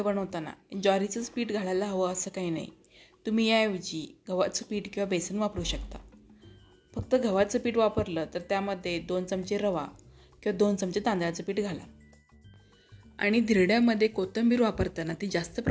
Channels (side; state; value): both; identical; correlation 1.00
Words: बनवताना ज्वारीचंच पीठ घालायला हवं असं काही नाही. तुम्ही याऐवजी गव्हाचं पीठ किंवा बेसन वापरू शकता. फक्त गव्हाचं पीठ वापरलं तर त्यामध्ये 2 चमचे रवा किंवा 2 चमचे तांदळाचं पीठ घाला. आणि धिरड्यामध्ये कोथिंबीर वापरताना ती जास्त